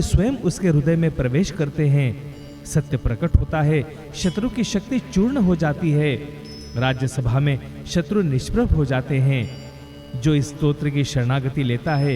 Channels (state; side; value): identical; both; correlation 1.00